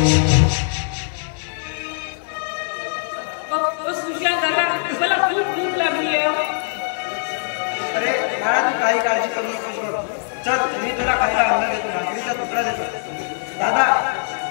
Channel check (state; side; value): silent; right; digital silence